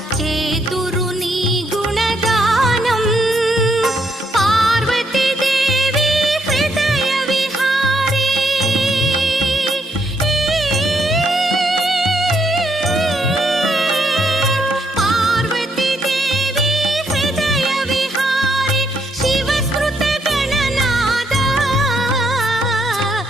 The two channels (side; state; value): both; normal; correlation 0.74